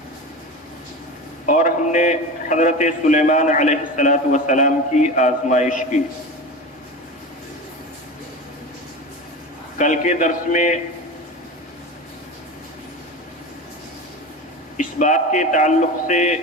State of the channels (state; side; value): normal; both; correlation 0.28